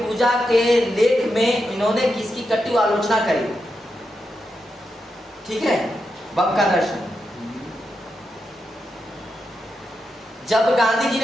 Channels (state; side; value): normal; both; correlation 0.86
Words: के लेख में इन्होंने किसकी कटु आलोचना करी। ठीक है, बम का दर्शन। जब गांधी जी